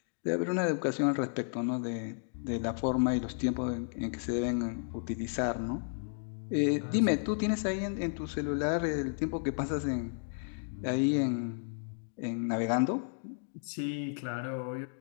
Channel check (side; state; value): right; silent; digital silence